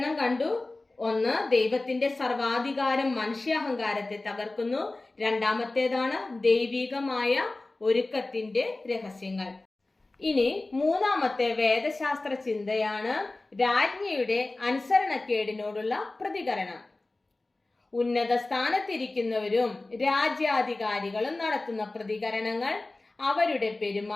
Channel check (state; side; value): quieter; right; 3.0 dB